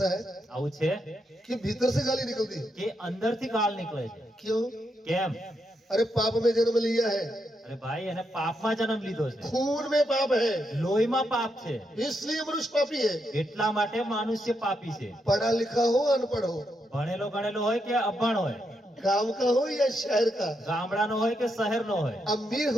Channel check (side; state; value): both; normal; correlation 0.81